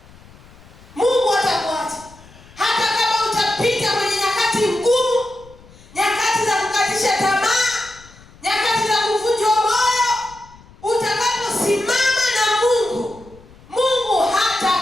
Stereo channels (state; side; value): noise; left; rumble, 23 dB below the sound